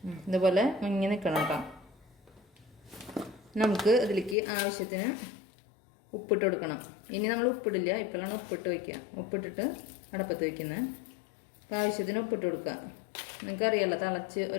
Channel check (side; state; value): right; drops out; at 4.4 s